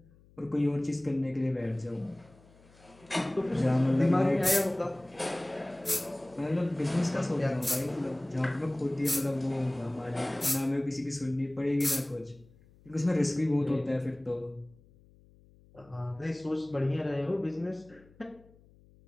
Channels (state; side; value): noise; left; hum, 27 dB below the sound